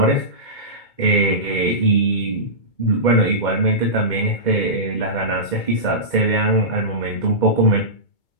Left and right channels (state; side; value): late; right; 2.1 ms